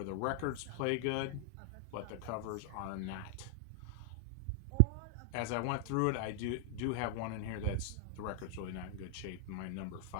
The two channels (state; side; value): different; both; correlation 0.00